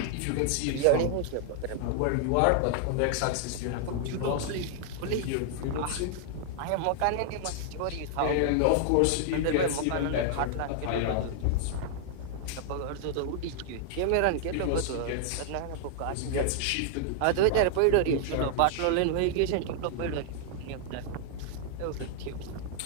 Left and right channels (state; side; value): different; both; correlation 0.00